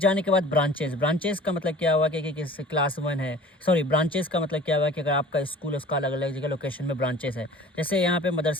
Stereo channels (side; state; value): both; normal; correlation 0.45